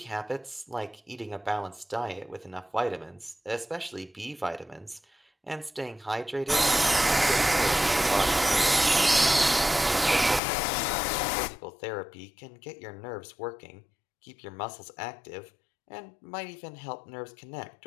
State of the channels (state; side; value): drops out; right; at 10.4 s